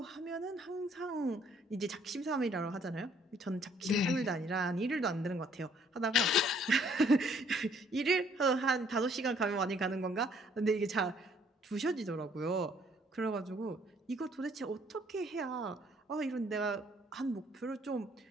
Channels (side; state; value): both; normal; correlation 0.63